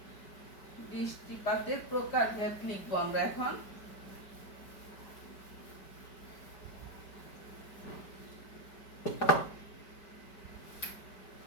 বৃষ্টিপাতের প্রকারভেদ লিখবো আমরা এখন।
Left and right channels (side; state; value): right; late; 5.0 ms